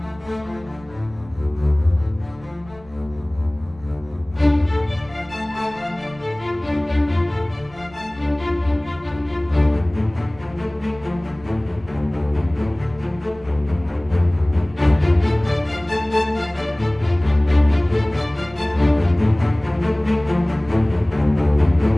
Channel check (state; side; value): noise; right; rumble, 23 dB below the sound